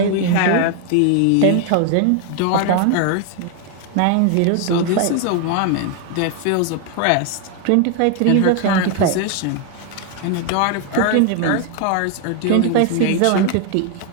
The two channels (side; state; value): both; different; correlation 0.01